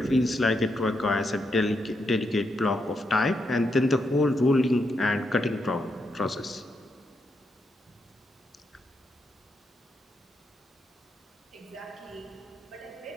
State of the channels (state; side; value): normal; both; correlation 0.82